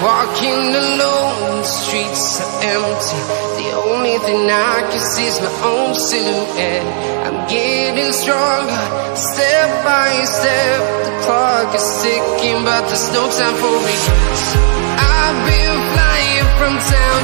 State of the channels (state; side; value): silent; left; 67 dB below the other